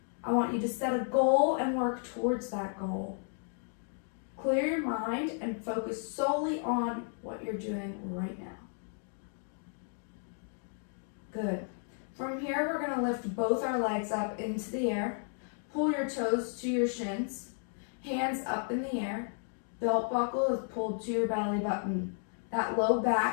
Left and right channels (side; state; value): right; silent; 56 dB below the other